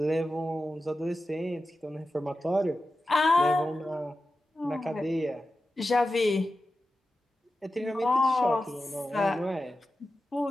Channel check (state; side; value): normal; both; correlation 0.92